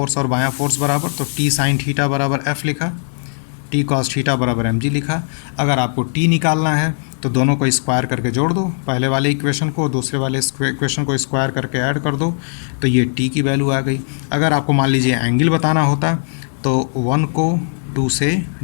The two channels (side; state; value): right; silent; digital silence